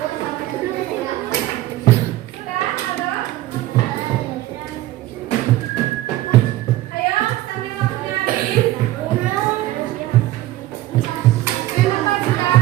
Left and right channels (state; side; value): quieter; left; 15.8 dB